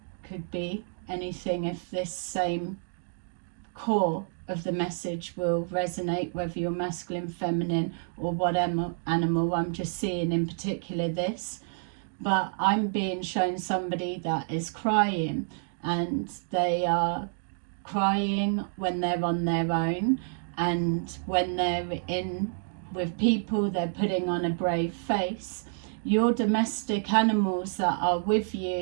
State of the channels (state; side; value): silent; left; digital silence